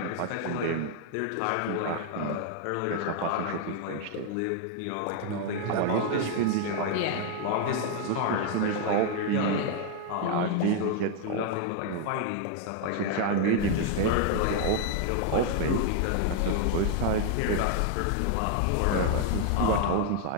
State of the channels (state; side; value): different; both; correlation 0.00